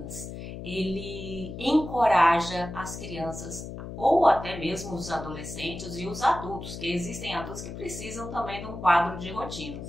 ele encoraja as crianças ou até mesmo os adolescentes e os adultos, que existem adultos que precisam também de um quadro de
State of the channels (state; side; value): noise; left; hum, 9 dB below the sound